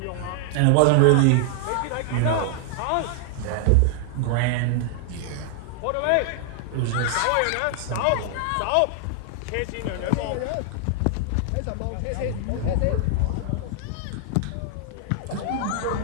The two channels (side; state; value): both; different; correlation 0.00